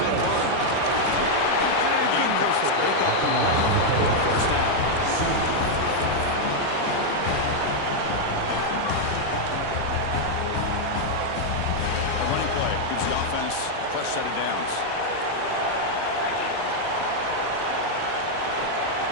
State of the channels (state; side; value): different; both; correlation 0.00